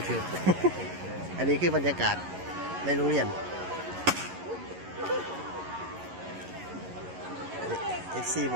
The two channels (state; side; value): late; left; 11 ms